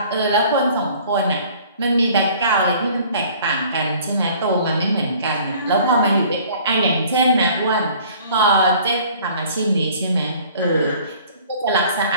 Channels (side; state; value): both; inverted; correlation -0.52